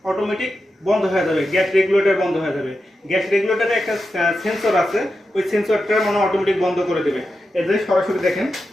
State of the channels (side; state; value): both; normal; correlation 0.89